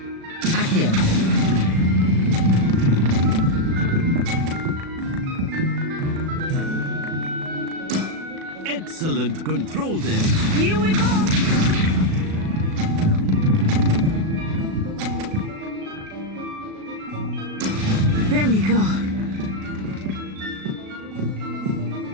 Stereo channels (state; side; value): late; left; 37 ms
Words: Accio. Excellent control there. Here we go. There we go.